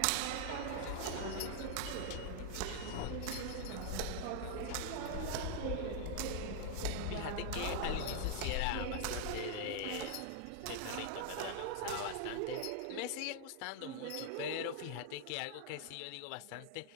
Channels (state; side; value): different; both; correlation 0.00